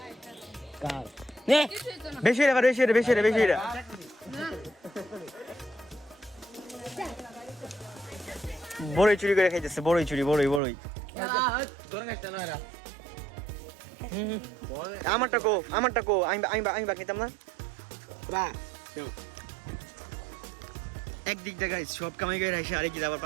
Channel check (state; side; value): drops out; left; at 10.6 s